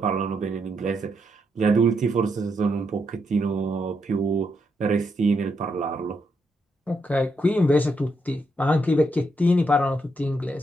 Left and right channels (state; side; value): normal; both; correlation 0.80